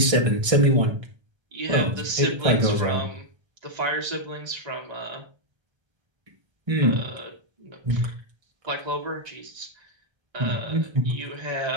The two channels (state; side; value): late; left; 1.3 ms